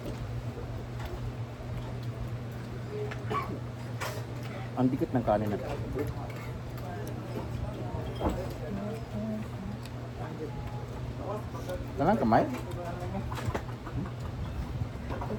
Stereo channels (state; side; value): identical; both; correlation 1.00